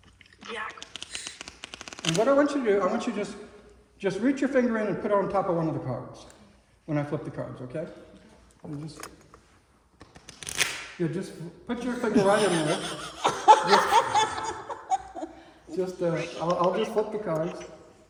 Jack. And what I want you to do, I want you to just reach your finger in and put it on top of one of the cards when I flip the cards, okay? You just put your finger right in there. I'll just flip the cards.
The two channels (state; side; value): identical; both; correlation 1.00